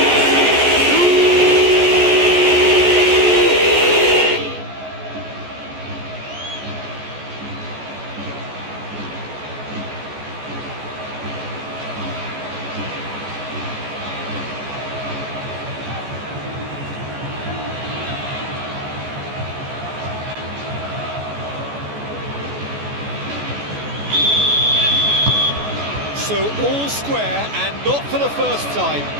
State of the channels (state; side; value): late; left; 14 ms